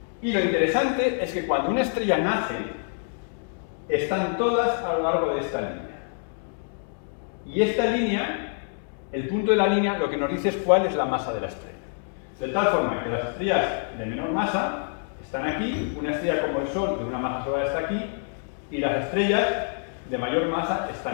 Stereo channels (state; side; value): silent; right; digital silence